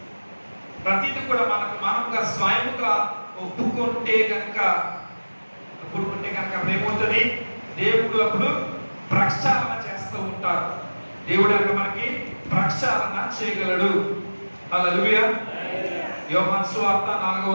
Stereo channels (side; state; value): both; inverted; correlation -1.00